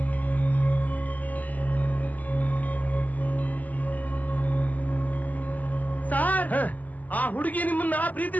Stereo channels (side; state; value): right; late; 0.079 ms